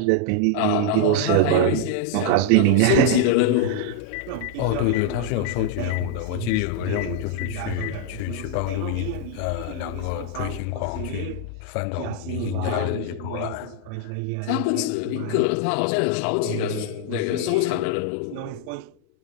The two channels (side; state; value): both; different; correlation 0.00